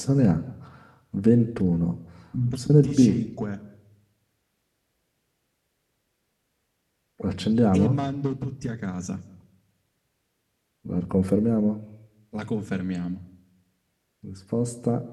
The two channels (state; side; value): identical; both; correlation 1.00